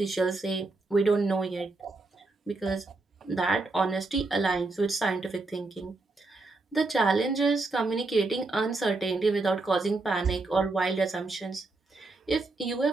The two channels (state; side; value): quieter; left; 3.3 dB